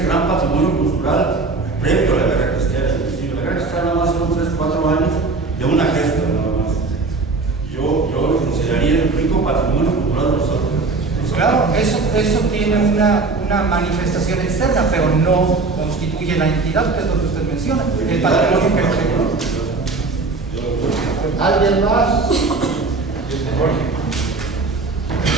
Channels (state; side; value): quieter; left; 3.8 dB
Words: gran patrimonio cultural previo a la guerra cristera. Inclusive la guerra cristera nada más fueron 3-4 años de una gesta nada más. Yo lo consideraría el rico patrimonio cultural de los Altos. Claro, eso tiene una manifestación externa, pero no constituye la entidad, que es lo que usted menciona, el patrimonio que ¿Alguien más?